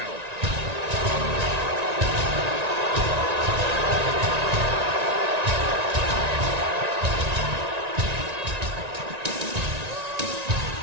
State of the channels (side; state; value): left; late; 1.9 ms